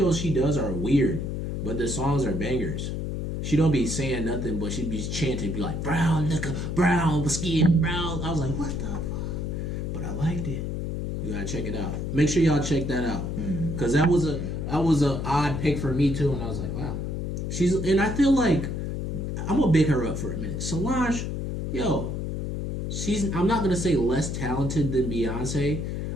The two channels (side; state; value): left; noise; hum, 3 dB below the sound